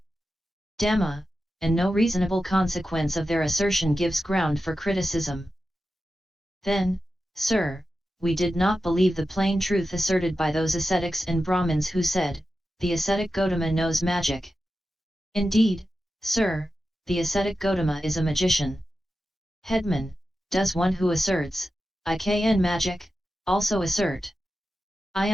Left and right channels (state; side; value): normal; both; correlation 0.92